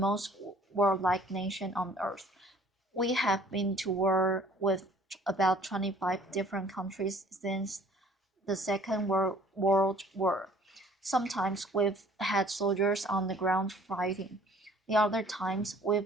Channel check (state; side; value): normal; both; correlation 0.54